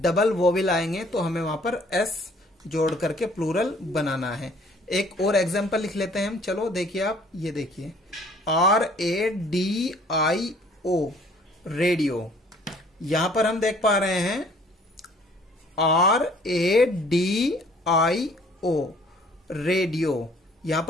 वोवेल आएंगे तो हमें वहां पर एस जोड़ करके प्लूरल बनाना है। एक और एग्जांपल लिख लेते हैं हम। चलो देखिए आप, ये देखिए RADIO रेडियो। यहां पर हम देख पा रहे हैं RADIO रेडियो, यहां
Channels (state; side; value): normal; both; correlation 0.57